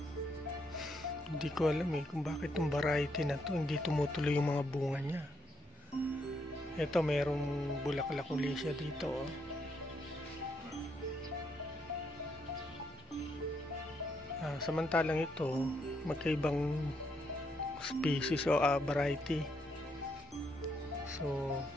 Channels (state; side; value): normal; both; correlation 0.76